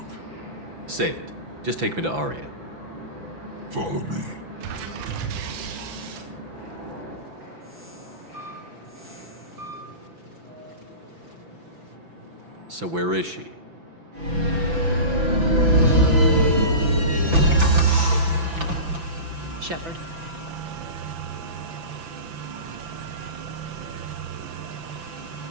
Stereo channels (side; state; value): left; late; 5.9 ms